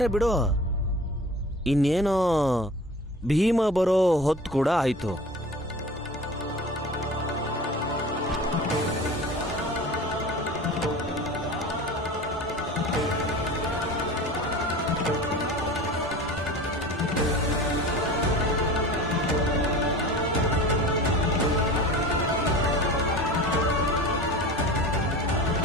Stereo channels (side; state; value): both; normal; correlation 0.37